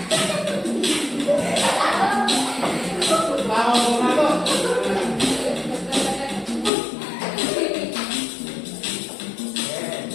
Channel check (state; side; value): drops out; right; at 6.7 s